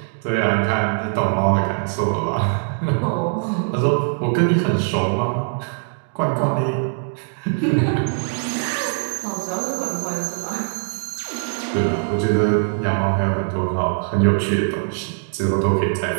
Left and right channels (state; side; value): silent; left; digital silence